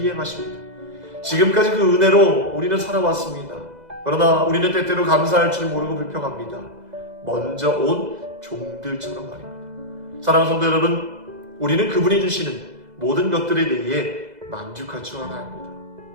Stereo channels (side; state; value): left; late; 2.0 ms